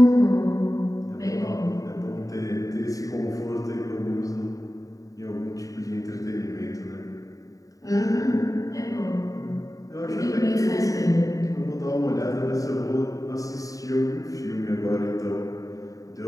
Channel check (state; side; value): late; right; 0.16 ms